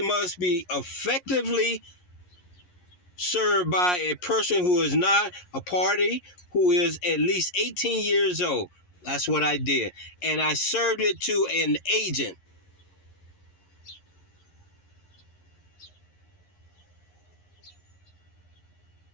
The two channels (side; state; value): right; late; 11 ms